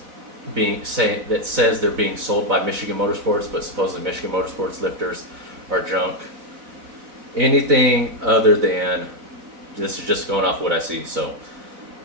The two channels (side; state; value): left; late; 4.0 ms